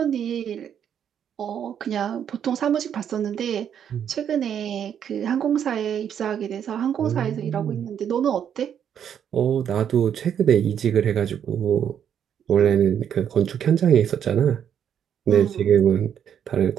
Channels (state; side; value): quieter; left; 8.8 dB